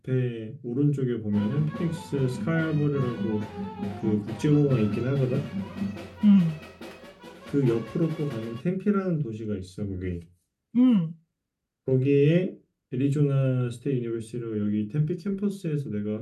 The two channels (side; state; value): both; identical; correlation 1.00